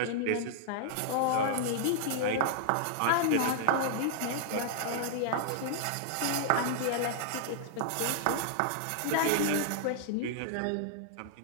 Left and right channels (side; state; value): both; different; correlation -0.01